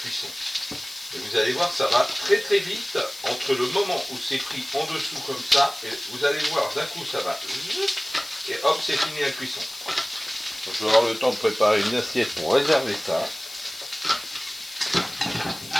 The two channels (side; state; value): left; noise; hiss, 15 dB below the sound